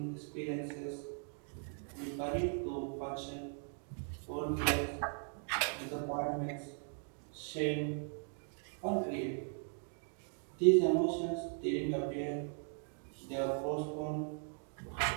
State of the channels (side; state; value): left; silent; 52 dB below the other